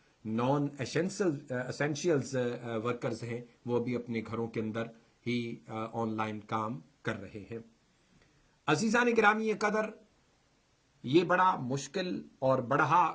نان اسینشیلز ورکرز ہیں، وہ بھی اپنے گھروں کے اندر ہی آن لائن کام کر رہے ہیں۔ عزیزان گرامی قدر، یہ بڑا مشکل اور بڑا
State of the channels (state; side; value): identical; both; correlation 1.00